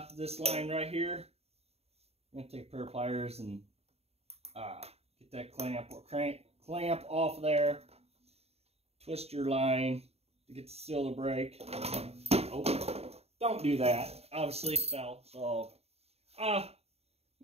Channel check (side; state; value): left; late; 0.30 ms